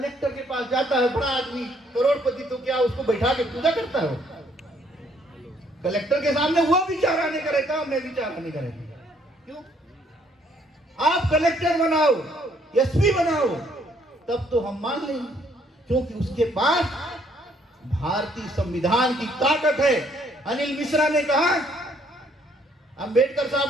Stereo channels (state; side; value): normal; both; correlation 0.66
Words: के पास जाता है बड़ा आदमी, करोड़पति, तो क्या उसको बैठा के पूजा करता है? कलेक्टर के सामने वो विचारा नहीं करेगा, मैं विचारा नहीं करेगा। क्यों? आप कलेक्टर बनाओ, एसपी बनाओ, तब तो हम मान लेंगे, क्योंकि उसके पास भारतीय संविधान की ताकत है। अनिल मिश्रा ने कहा अंबेडकर साहब